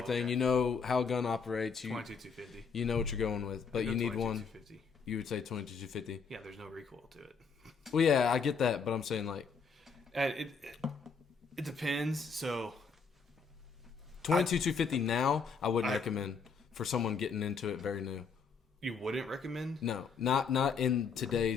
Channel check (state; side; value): quieter; right; 5.4 dB